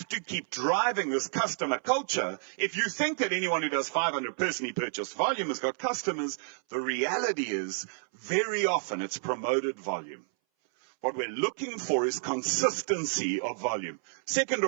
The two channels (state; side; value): silent; left; 58 dB below the other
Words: to keep driving this customer culture. If you think that anyone who does 500 personally purchased volume has got customers, the reality is very often it's promoted volume. What we're looking for is consistency of volume. Second